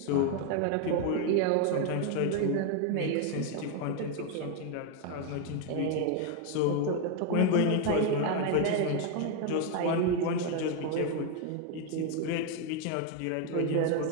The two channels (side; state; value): both; different; correlation 0.01